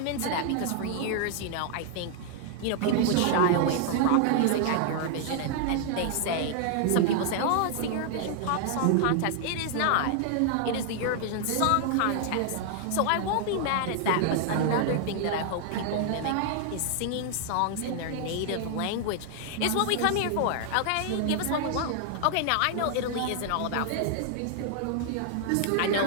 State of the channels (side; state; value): both; different; correlation 0.00